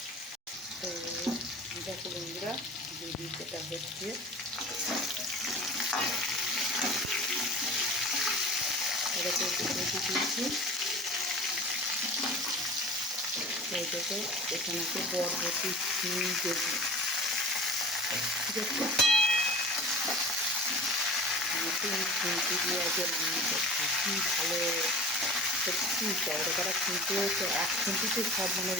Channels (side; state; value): both; normal; correlation 0.40